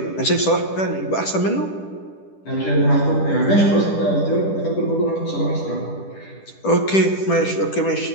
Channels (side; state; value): right; late; 10 ms